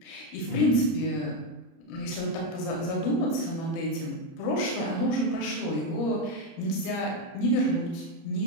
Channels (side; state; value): right; late; 30 ms